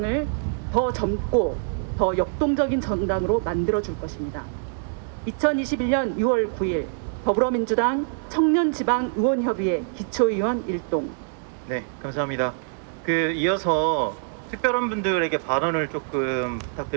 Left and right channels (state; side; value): silent; left; 62 dB below the other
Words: 더 젊고 더 역동적인 정당으로 만들어줄 것입니다. 2021년 6월 9일 더불어민주당 청년지방의원협의회 기초의원 일동. 네, 감사합니다. 이어서 특별한 분들에게 발언을 조금